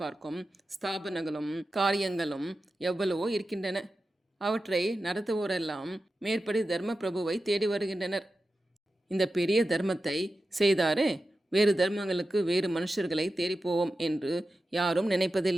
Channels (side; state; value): both; normal; correlation 0.92